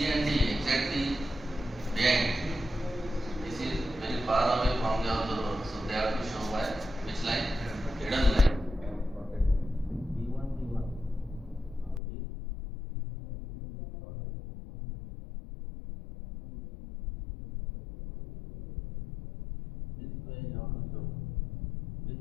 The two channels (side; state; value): right; drops out; at 12.0 s